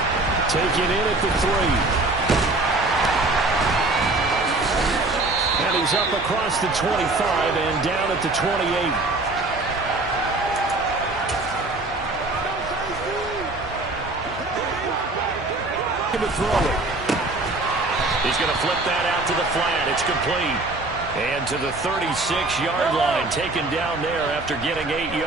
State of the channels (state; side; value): quieter; left; 3.0 dB